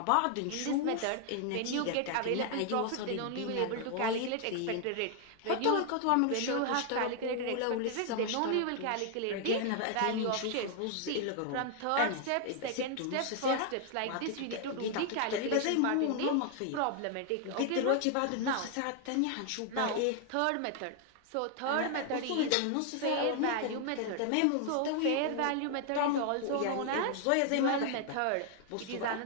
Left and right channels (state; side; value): different; both; correlation 0.00